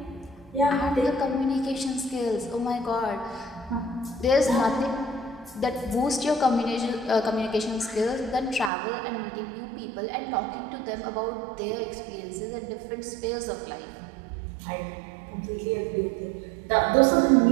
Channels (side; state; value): left; drops out; at 8.7 s